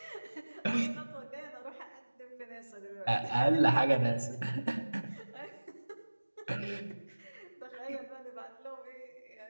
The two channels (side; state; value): both; inverted; correlation -1.00